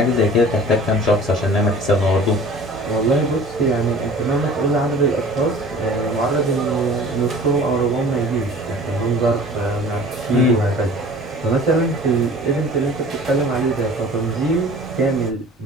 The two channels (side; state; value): both; normal; correlation 0.45